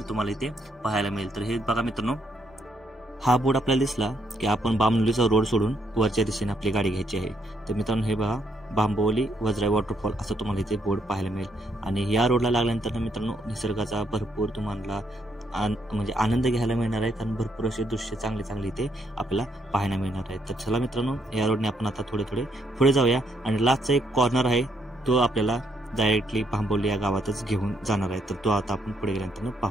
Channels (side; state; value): both; normal; correlation 0.73